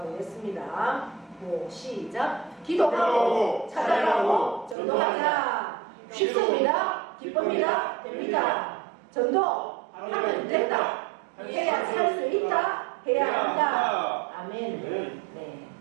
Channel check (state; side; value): drops out; left; at 4.8 s